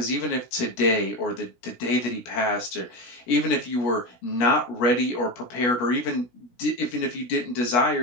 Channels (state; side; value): late; right; 17 ms